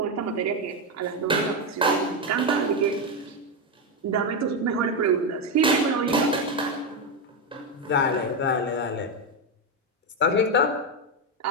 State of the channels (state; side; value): normal; both; correlation 0.08